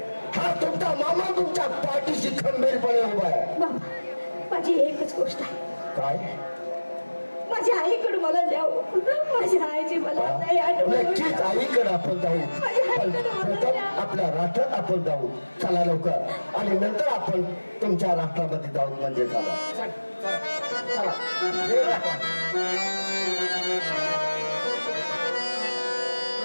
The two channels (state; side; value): inverted; both; correlation -1.00